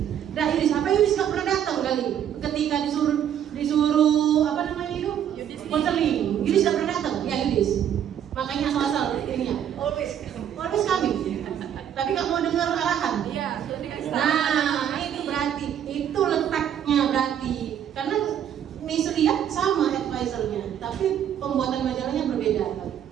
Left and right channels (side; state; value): left; quieter; 9.6 dB